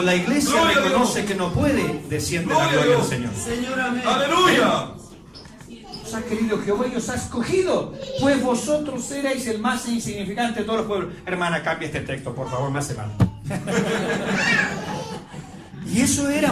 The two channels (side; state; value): both; identical; correlation 1.00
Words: la iglesia reconoce que no puede, desciende la gloria del Señor. ¡Aleluya! Os ha querido Jehová y os ha escogido, pues vosotros erais el más insignificante de todos los pueblos. Hermana, cambia este texto, por favor, me hace mal. Y eso